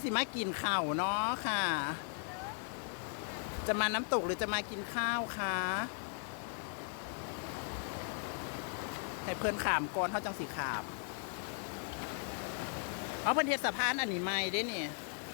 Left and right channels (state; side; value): silent; right; 53 dB below the other